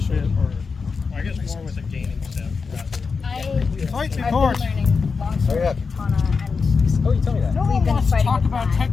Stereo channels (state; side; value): quieter; right; 5.0 dB